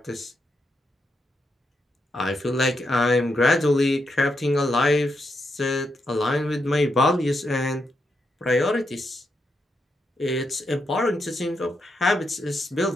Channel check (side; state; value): both; normal; correlation 0.82